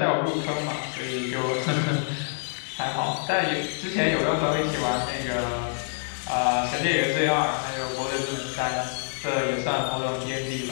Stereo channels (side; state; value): right; silent; 61 dB below the other